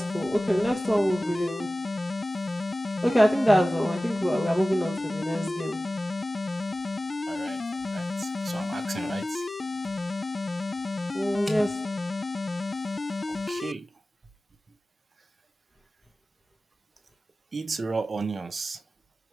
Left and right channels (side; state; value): both; normal; correlation 0.96